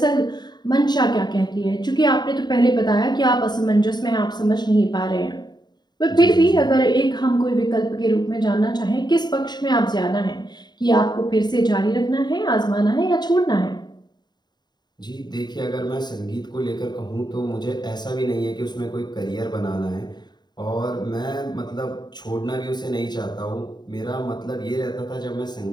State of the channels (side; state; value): right; late; 0.21 ms